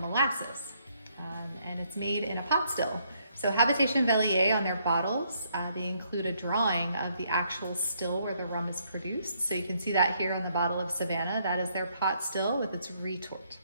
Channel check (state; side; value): inverted; both; correlation -0.71